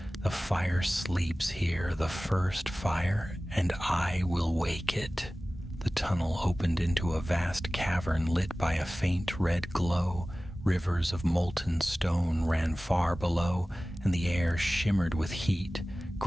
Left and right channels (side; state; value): both; normal; correlation 0.97